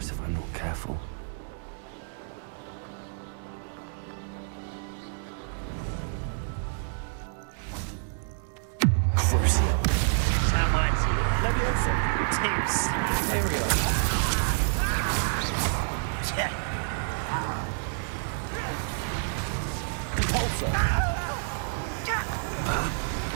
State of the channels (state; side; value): silent; left; digital silence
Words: if I'm not careful. Crucial. Termites. Leviosa. Tips. Imperial. Repulsor.